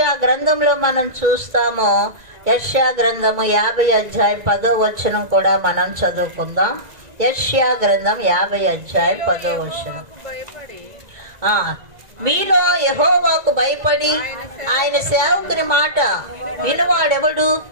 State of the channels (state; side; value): late; left; 2.0 ms